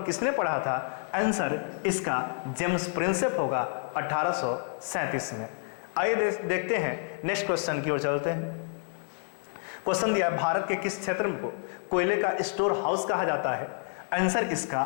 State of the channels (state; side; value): silent; right; 59 dB below the other